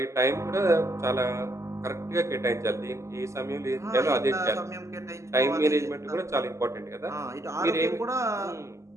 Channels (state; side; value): late; left; 0.14 ms